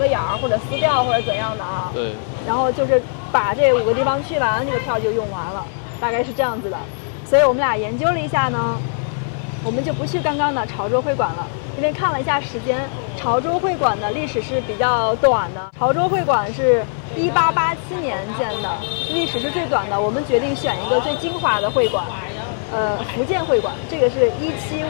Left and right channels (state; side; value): silent; right; 58 dB below the other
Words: 眼儿，或者撕掉，或者怎样的啊。对。然后就是把这5个地方去完，这个票就用完了，大概是这样子的。所以我们俩研究了一下呢，我们就不去刚刚的潮州会馆了，因为看了一下时间，潮州会馆的历史是比较短的。潮州会馆是1887年建的，历史是最短的。我们决定选一个最精华的会馆，福建会馆，这个是